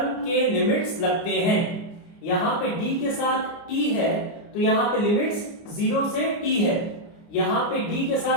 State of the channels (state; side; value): late; right; 29 ms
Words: के लिमिट्स लगते हैं. यहाँ पे d के साथ t है, तो यहाँ पे लिमिट्स 0 से t है. यहाँ पे d के